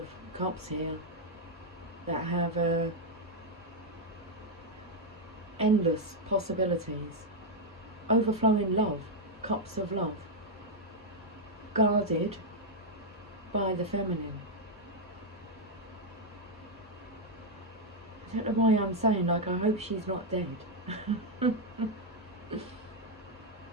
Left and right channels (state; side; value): normal; both; correlation 0.00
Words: cups here that have endless possibilities. Overflowing love, cups of love, guarded by the feminine. I don't know why I'm saying, like, I hope she's not dead.